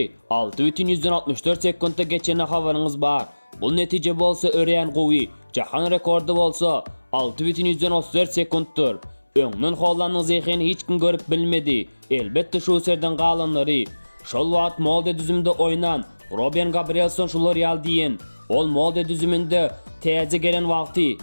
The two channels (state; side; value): inverted; both; correlation -1.00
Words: 6,64 sekundda geçene habarınız var. Bu netije bolsa öreyen qowy, jahan rekordu bolsa 6,34 sekunddur. Öňden Holland'ın zehini hiç kim görüp bilmedi. Elbette şu serden qalanları. Şol wagt molde düzümde oynan Robin Gabrielson şular yal diyen. Ol molde düzümünde taze gelen wagty